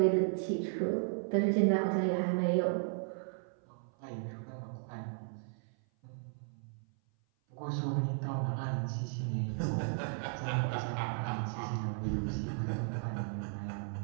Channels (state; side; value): silent; left; 54 dB below the other